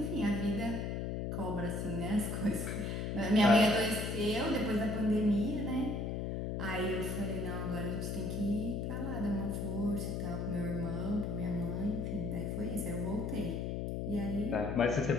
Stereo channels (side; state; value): left; noise; hum, 2 dB below the sound